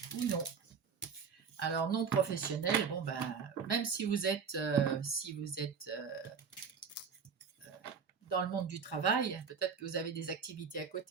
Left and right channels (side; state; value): left; quieter; 6.1 dB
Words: Alors non professionnelles, bon ben, même si vous êtes dans le monde du travail, peut-être que vous avez des activités à